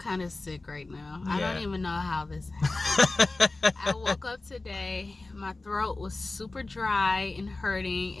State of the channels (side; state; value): right; quieter; 3.2 dB